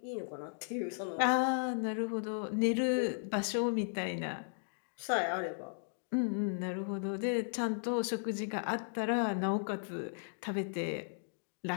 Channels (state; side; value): silent; right; digital silence